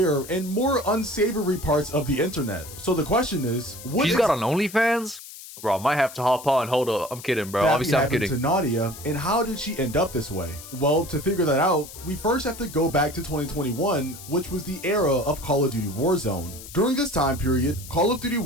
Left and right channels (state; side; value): noise; left; hiss, 15 dB below the sound